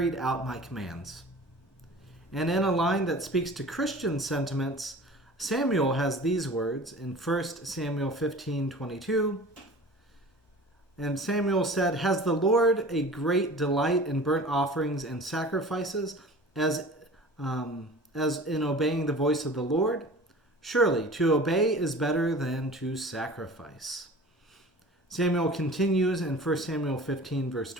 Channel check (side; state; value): both; normal; correlation 0.41